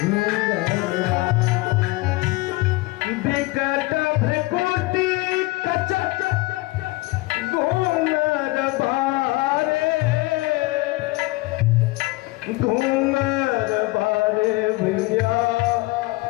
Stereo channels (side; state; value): right; quieter; 21.8 dB